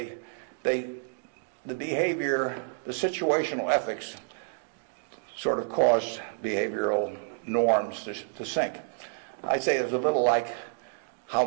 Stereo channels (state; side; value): silent; left; digital silence